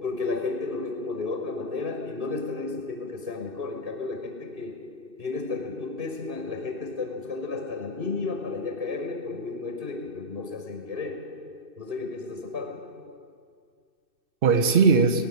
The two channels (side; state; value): left; late; 2.6 ms